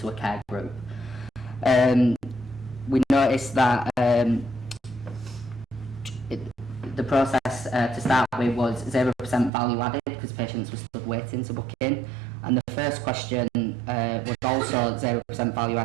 a care group. We noticed that the process to start with was 0% value added because patients were stood waiting to book in, and the first question was also 0% value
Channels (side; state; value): left; drops out; at 9.5 s